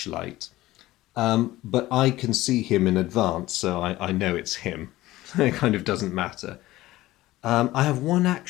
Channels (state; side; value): quieter; right; 17.1 dB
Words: But I can see him in advance, so I know it's him. It kind of doesn't matter. I have one